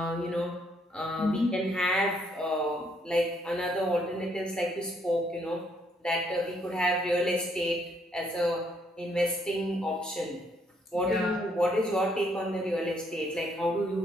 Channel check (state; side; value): normal; both; correlation 0.70